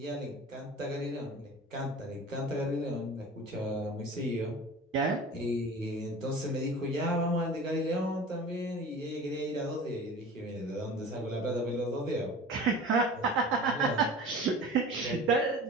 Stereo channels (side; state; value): both; normal; correlation 0.38